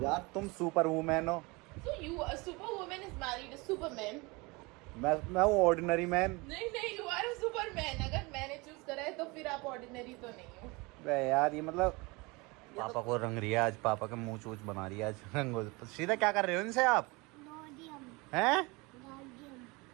यार तुम सुपर वुमेन हो। So you a super woman is married a Superman. मैं हूँ ऑर्डिनरी मैन। नहीं यू आर अ सुपरमैन। अगर मैंने चूज करा है तो फिर आप ऑर्डिनरी तो नहीं हो। बे यार ये मतलब पापा को रंग रही है आज। पापा के मुंह चूच बना रही है आज रंगो। सीधा क्या कर रहे हो इनसे आप? हैं?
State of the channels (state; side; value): quieter; left; 25.6 dB